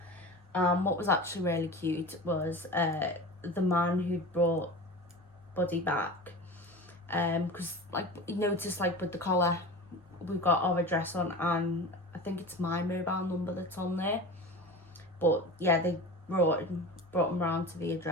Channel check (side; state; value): both; normal; correlation 0.32